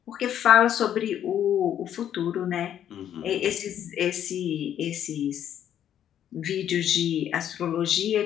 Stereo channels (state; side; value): quieter; right; 10.2 dB